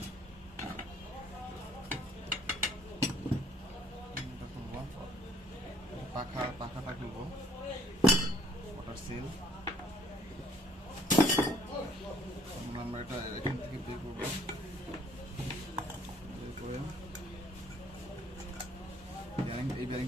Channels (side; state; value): both; normal; correlation 0.59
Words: পাখাটা খুলবো, ওয়াটার সিল। আমরা এটা এখান থেকে বের করবো, বের করে এই